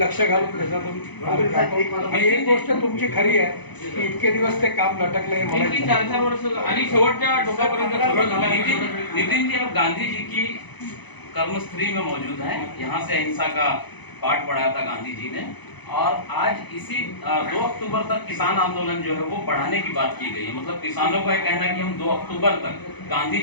घालून त्याच्यातून. आणि एक गोष्ट तुमची खरी आहे की इतके दिवस ते काम लटकले हे मला किती 4-4 वर्ष आणि शेवटच्या टोकापर्यंत सगळं झालं. नितिन जी, अब गांधी जी की कर्मस्थली में मौजूद हैं। यहाँ से अहिंसा का पाठ पढ़ाया था गांधी जी ने, और आज इसी 2 अक्टूबर तक किसान आंदोलन जो है वो बढ़ाने की बात की गई है। मतलब किसानों का ये कहना है कि हम 2 अक्टूबर तक गांधी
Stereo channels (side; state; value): right; late; 1.0 ms